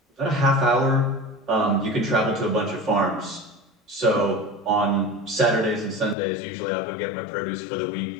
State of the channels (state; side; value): drops out; right; at 6.2 s